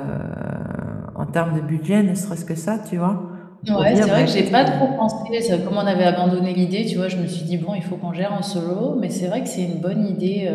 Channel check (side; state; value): both; identical; correlation 1.00